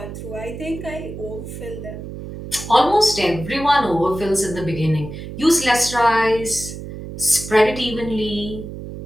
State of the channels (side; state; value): right; noise; hum, 10 dB below the sound